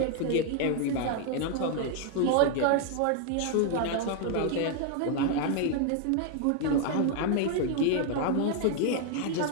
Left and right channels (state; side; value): different; both; correlation 0.00